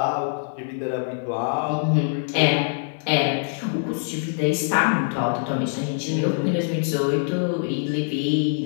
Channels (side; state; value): right; silent; digital silence